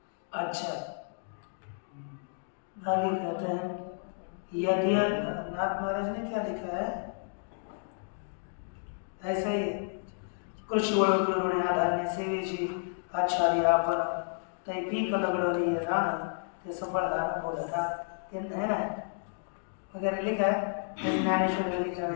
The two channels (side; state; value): right; silent; digital silence